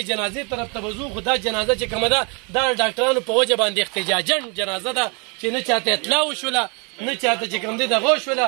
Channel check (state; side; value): quieter; left; 33.5 dB